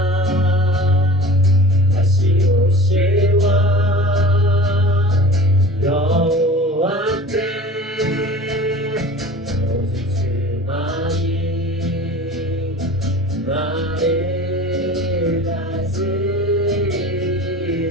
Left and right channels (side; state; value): both; normal; correlation 0.40